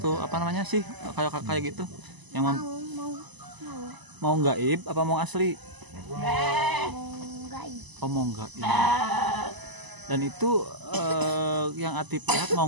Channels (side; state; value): left; late; 1.0 ms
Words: Apa namanya sih? Kayak gitu. Yang mau gaib apa mau asli? Mau gaib. Oh, mau gaib. Dan itu yang Atip lihat mau